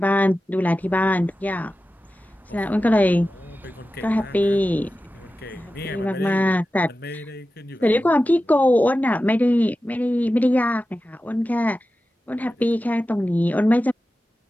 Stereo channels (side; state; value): both; normal; correlation 0.94